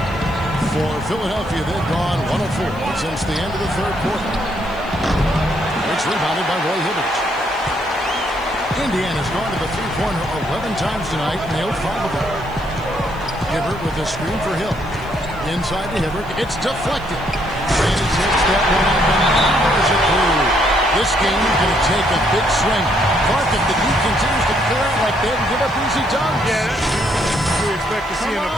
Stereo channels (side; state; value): right; noise; hiss, 27 dB below the sound